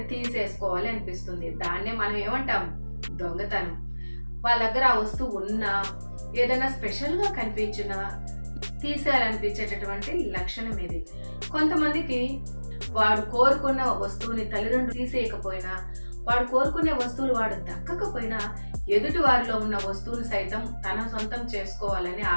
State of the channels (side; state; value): both; inverted; correlation -1.00